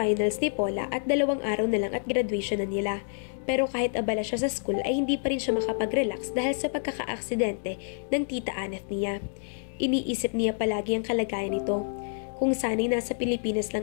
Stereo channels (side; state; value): right; silent; digital silence